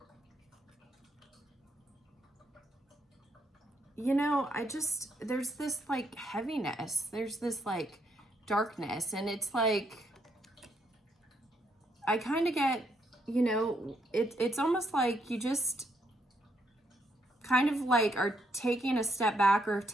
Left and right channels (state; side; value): normal; both; correlation 0.75